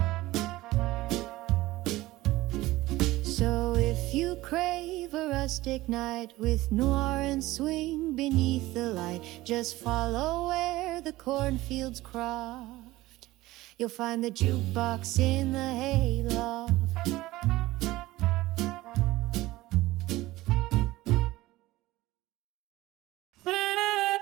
So if you crave a rustic night with noir and swing beneath the light, just follow where the cornfields cross. You'll find the jukebox in the hayloft.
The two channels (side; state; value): left; quieter; 18.0 dB